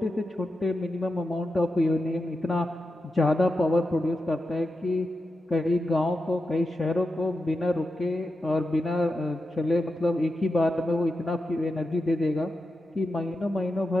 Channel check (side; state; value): both; normal; correlation 0.89